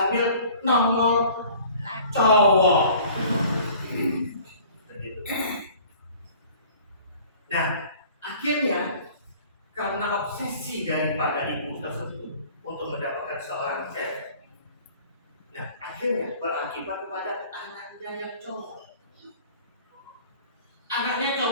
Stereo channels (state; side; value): inverted; both; correlation -0.49